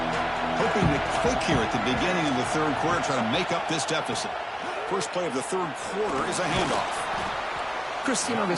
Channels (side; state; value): both; identical; correlation 1.00